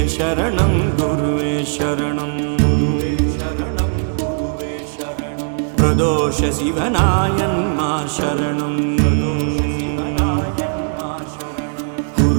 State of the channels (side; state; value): left; silent; digital silence